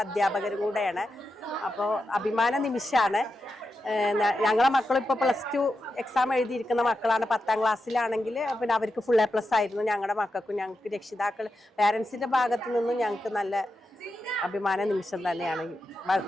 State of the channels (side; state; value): both; normal; correlation 0.88